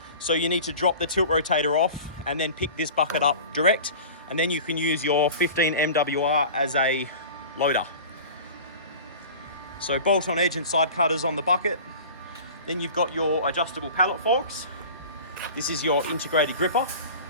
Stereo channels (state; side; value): inverted; both; correlation -0.38